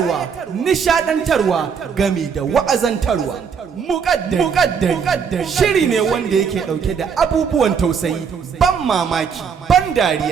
nishadantarwa gami da wa'azantarwa. Mukaddari shiri ne wanda yake ɗauke da abubuwan tausayi, ban mamaki, ban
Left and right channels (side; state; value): left; quieter; 6.6 dB